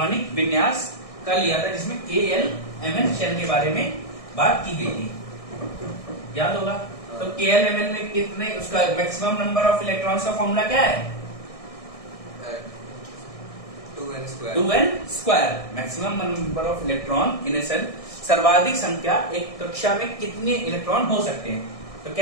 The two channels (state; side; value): late; right; 1.6 ms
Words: विन्यास का लिया था, जिसमें KLMN शेल के बारे में बात की गई थी, याद होगा। तो KLMN में कितने, उसका मैक्सिमम नंबर ऑफ इलेक्ट्रॉन्स का फॉर्मूला क्या है? 2n square. Maximum number of electron in a shell, सर्वाधिक संख्या एक कक्षा में कितने इलेक्ट्रॉन हो सकते हैं, तो